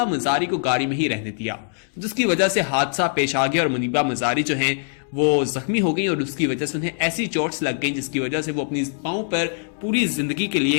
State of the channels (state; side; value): silent; right; 63 dB below the other